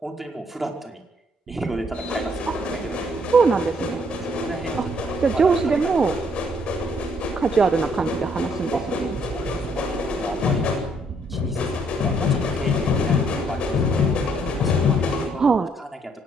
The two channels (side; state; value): both; normal; correlation 0.68